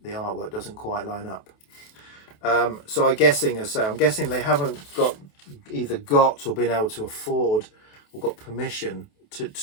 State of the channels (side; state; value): right; late; 28 ms